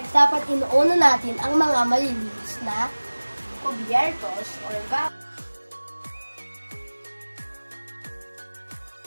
dapat inuuna natin ang mga malilinis na kubyertos or vacuum.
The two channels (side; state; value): both; inverted; correlation -1.00